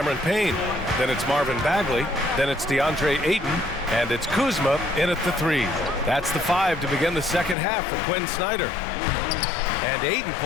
Payne. Then it's Marvin Bagley. Then it's DeAndre Ayton. And it's Kuzma in at the 3. That's the 5 to begin the second half for Quinn Snyder. And Ayton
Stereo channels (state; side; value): drops out; right; at 7.6 s